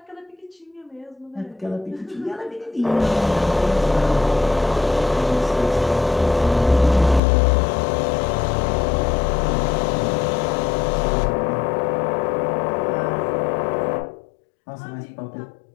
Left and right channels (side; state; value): right; drops out; at 7.2 s